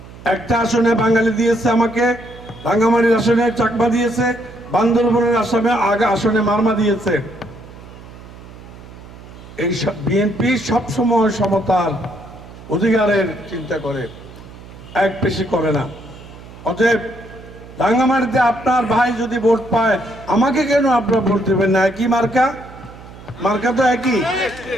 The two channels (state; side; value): noise; right; hum, 18 dB below the sound